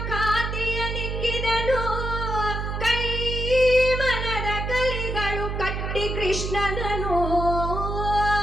ಖಾತಿಯ ನಿಕ್ಕಿದನು ಕೈ ಮನದ ಕಲಿಗಳು ಕಟ್ಟಿ ಕೃಷ್ಣನನು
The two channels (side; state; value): right; noise; hum, 3 dB below the sound